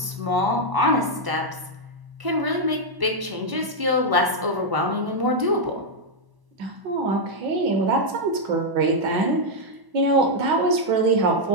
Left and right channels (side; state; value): left; late; 1.0 ms